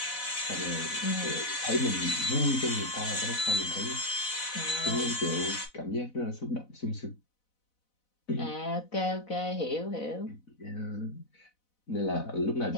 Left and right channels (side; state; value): right; late; 4.0 ms